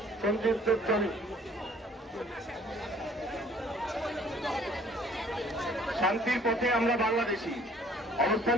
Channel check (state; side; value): normal; both; correlation 0.56